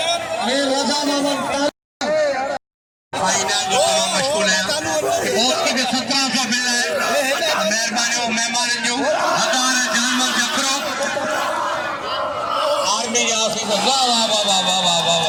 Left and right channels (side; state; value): both; identical; correlation 1.00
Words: रजा मोहम्मद फाइनल जो मशगूल है उसके भी 1700 बिल है मेहरबानी और मेहमान जो हज़ार जानवर जकरो आर्मी के ऑफिसर वाह वाह वाह वाह वाह वाह वाह